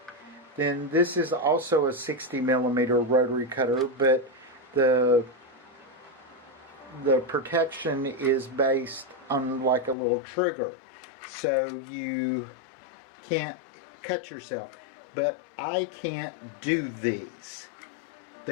Then this is also a 60 millimeter rotary cutter, but the protection is based on like a little trigger, so you can't cut yourself. But I can't do these.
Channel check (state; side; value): drops out; right; at 10.0 s